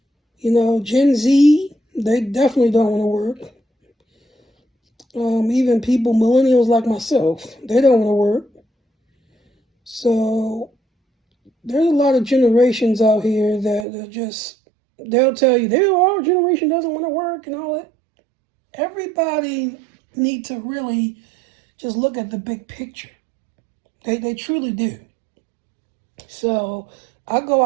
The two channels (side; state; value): left; drops out; at 13.9 s